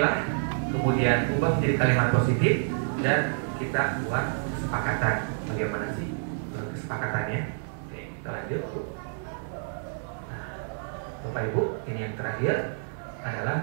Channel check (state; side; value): silent; left; digital silence